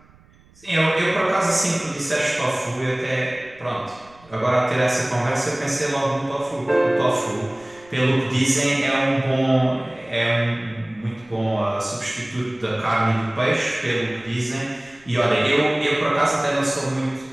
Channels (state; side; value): noise; right; rumble, 28 dB below the sound